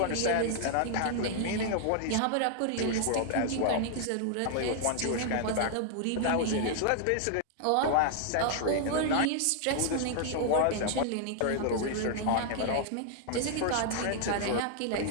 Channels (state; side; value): different; both; correlation 0.00